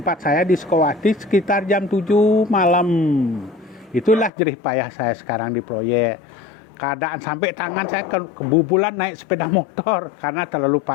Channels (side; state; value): right; drops out; at 4.3 s